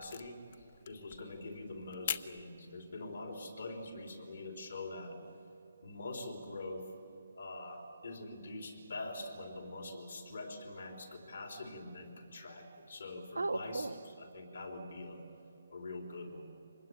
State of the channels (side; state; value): both; inverted; correlation -0.80